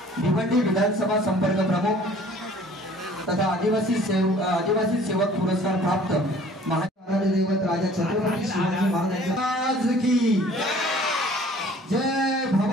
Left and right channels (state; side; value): normal; both; correlation 0.52